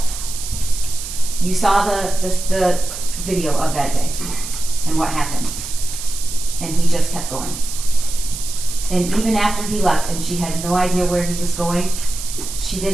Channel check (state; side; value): noise; right; hiss, 9 dB below the sound